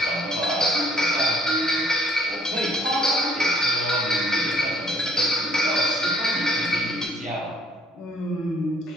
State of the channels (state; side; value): normal; both; correlation 0.61